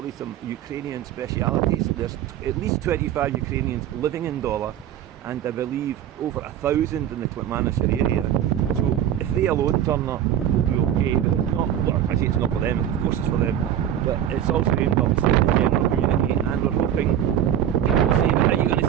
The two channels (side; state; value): left; quieter; 10.6 dB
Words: some Ukrainian specialities. There's at least 25 Ukrainians living in Dollar, and I believe over 1,000 in the Klitmanashir area. So if they alone turn up, we'll be UK, but it's not, well, I say it's not for them, of course it's for them, but it's also aimed obviously at the general community, and we're hoping people say, but are you going to